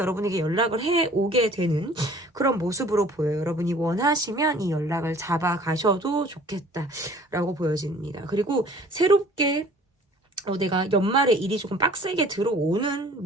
연락을 해 오게 되는 그런 모습으로 보여요. 여러분이 원하시면 이 연락을 잡아가셔도 좋겠다라고 보여집니다. 그리고 새롭게 내가 연말에 일이 조금 빡세게 들어오는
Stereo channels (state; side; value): normal; both; correlation 0.51